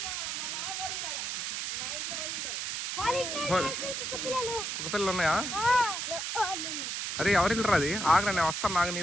కుక్క పిల్లలు ఉన్నాయా? అరే ఎవరిల్లు రాది? ఆగరా నేను వస్తాను, నాకు నీ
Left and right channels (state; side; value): noise; right; hiss, 3 dB below the sound